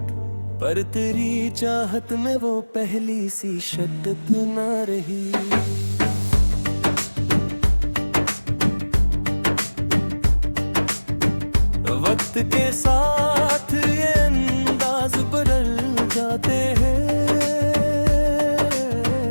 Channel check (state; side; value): inverted; both; correlation -1.00